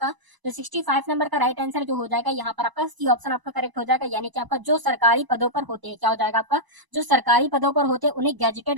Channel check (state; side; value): late; left; 1.0 ms